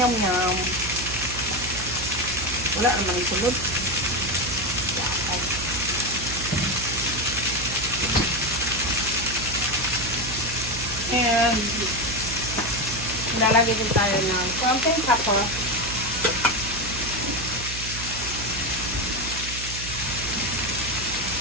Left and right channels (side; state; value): right; noise; hum, 9 dB below the sound